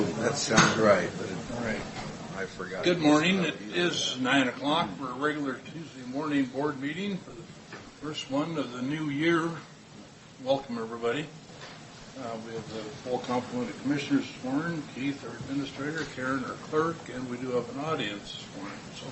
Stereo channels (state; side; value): identical; both; correlation 1.00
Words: That sounds right, but I forgot. Good morning. It is 9 o'clock for a regular Tuesday morning board meeting for the first one of the new year. Welcome, everybody. We have the full complement of commissioners sworn, Keith, our administrator, Karen, our clerk, and we do have an audience sworn. So